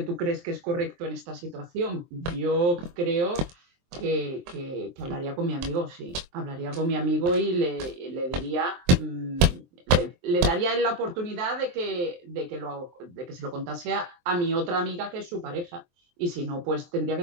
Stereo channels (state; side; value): late; left; 23 ms